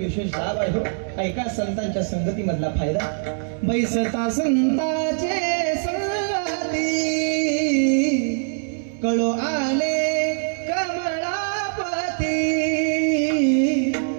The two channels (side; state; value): left; silent; digital silence